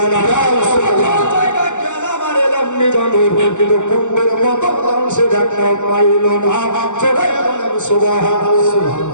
আল্লাহ জায়গা গেলাম আর এলাম জানো কিন্তু কুম্ভের মতো সে দেখা পাইল না জোরে বলেন সুবহানাল্লাহ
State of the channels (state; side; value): late; right; 0.84 ms